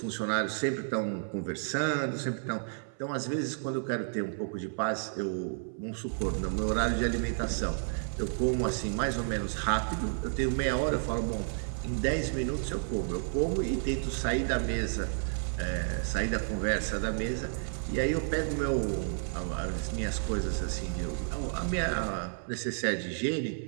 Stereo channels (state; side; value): silent; left; 57 dB below the other